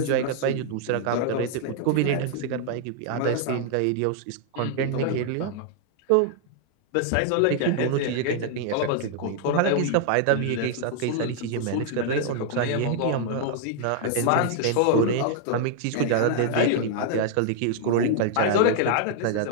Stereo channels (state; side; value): different; both; correlation 0.00